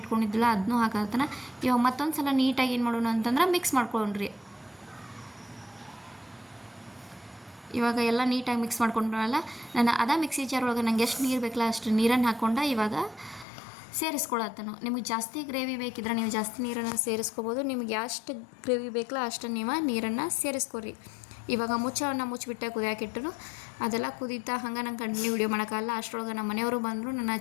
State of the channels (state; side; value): drops out; right; at 13.5 s